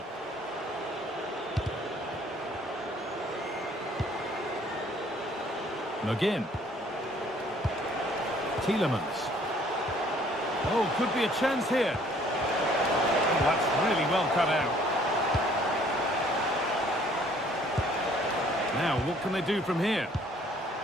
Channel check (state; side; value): normal; both; correlation 0.59